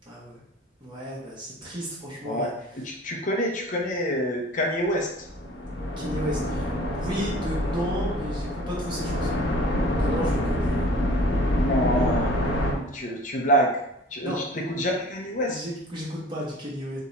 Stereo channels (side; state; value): both; normal; correlation 0.47